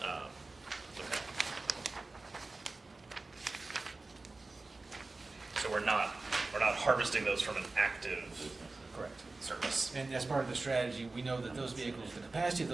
Okay. So we're not harvesting those from an active Correct. service. And as part of the strategy, we know that those vehicles, the capacity of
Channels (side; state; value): left; quieter; 3.4 dB